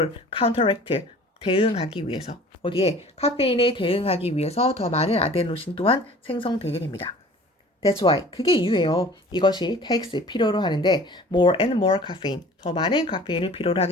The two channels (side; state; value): both; normal; correlation 0.46